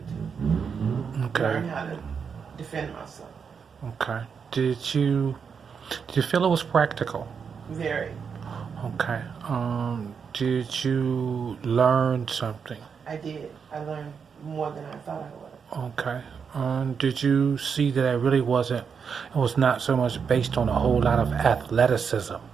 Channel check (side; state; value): left; quieter; 6.3 dB